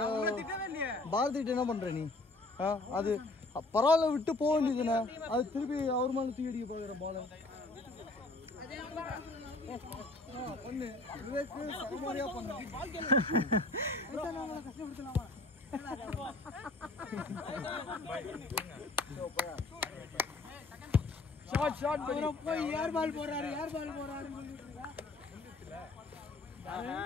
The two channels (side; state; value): right; quieter; 3.1 dB